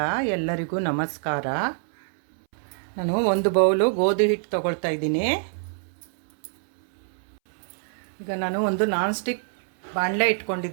ಎಲ್ಲರಿಗೂ ನಮಸ್ಕಾರ. ನಾನು ಒಂದು ಬೌಲು ಗೋಧಿ ಹಿಟ್ಟು ತಗೊಳ್ತಾ ಇದ್ದೀನಿ. ಈಗ ನಾನು ಒಂದು ನಾನ್ ಸ್ಟಿಕ್ ಬಾಣಲೆ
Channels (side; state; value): left; silent; 61 dB below the other